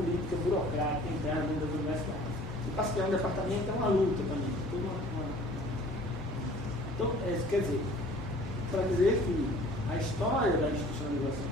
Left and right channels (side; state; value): both; normal; correlation 0.50